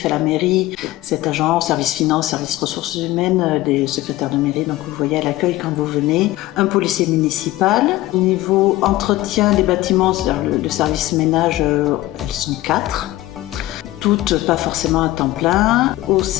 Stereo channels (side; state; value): right; quieter; 16.7 dB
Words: à la mairie, 7 agents, au service finance, service ressources humaines, des secrétaires de mairie, donc vous voyez à l'accueil quand vous venez. Un policier municipal. Au niveau entretien des bâtiments, c'est-à-dire le service ménage, elles sont 4. Toutes pas forcément à temps plein. Au